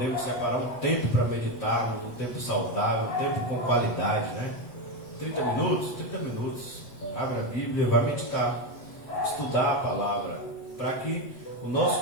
separar um tempo para meditarmos, um tempo saudável, um tempo com qualidade, né? 30 minutos. Abre a Bíblia, vai meditar, estudar a palavra, para que o nosso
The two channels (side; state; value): right; late; 8.0 ms